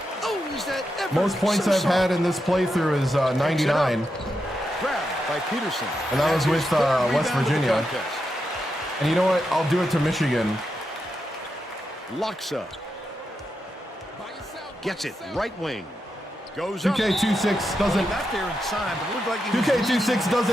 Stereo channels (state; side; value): normal; both; correlation 0.86